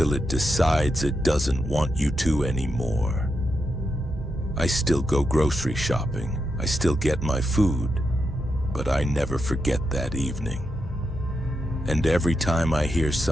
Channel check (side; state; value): both; normal; correlation 0.85